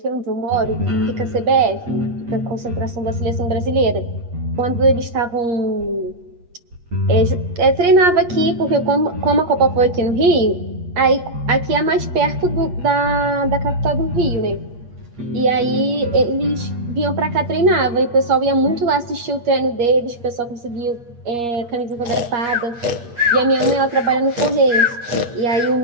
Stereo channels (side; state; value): left; late; 8.4 ms